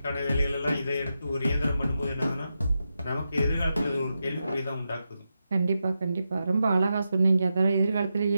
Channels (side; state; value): both; inverted; correlation -0.88